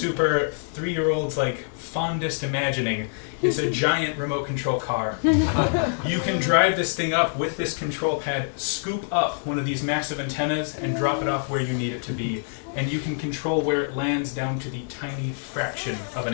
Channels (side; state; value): right; silent; digital silence